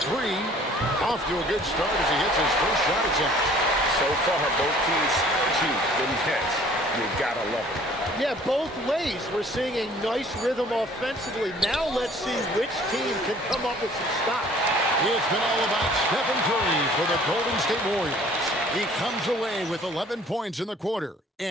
three. Off to a good start as he hits his first shot attempt. So far, both teams scorching the nets. You gotta love it. Yeah, both ways. We're seeing a nice rhythm offensively. Now let's see which team can come up with some stops. It's been all about Stephen Curry for the Golden State Warriors. He comes away with 11 points in the quarter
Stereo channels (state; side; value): normal; both; correlation 0.54